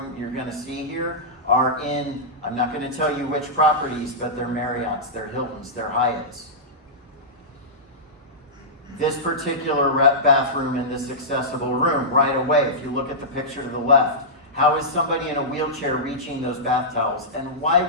you're going to see here are in, I'm not going to tell you which properties, but they're Marriotts, they're Hiltons, they're Hyatts. This particular bathroom in this accessible room, right away, if you look at the picture to the left, how is somebody in a wheelchair reaching those bath towels? And why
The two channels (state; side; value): normal; both; correlation -0.14